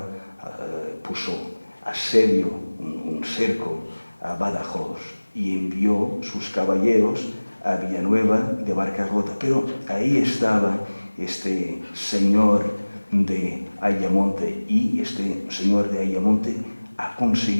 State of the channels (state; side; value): inverted; both; correlation -1.00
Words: puso asedio, un cerco a Badajoz y envió sus caballeros a Villanueva de Barcarrota. Pero ahí estaba este señor de Ayamonte, y este señor de Ayamonte ha